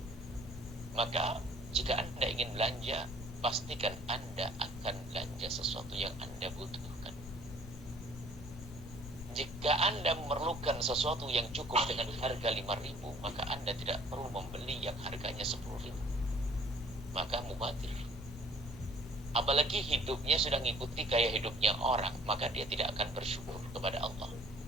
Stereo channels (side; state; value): both; normal; correlation 0.54